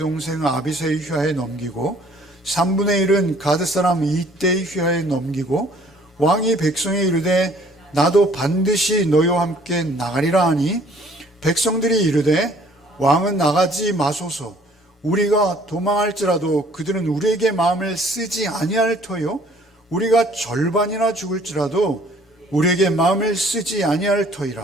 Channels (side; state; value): both; normal; correlation 0.57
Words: 아비새의 휘하에 넘기고 3분의 1은 가드 사람 이때의 휘하에 넘기고 왕이 백성에 이르되 나도 반드시 너희와 함께 나가리라 하니 백성들이 이르되 왕은 나가지 마소서. 우리가 도망할지라도 그들은 우리에게 마음을 쓰지 아니할 터요 우리가 절반이나 죽을지라도 우리에게 마음을 쓰지 아니할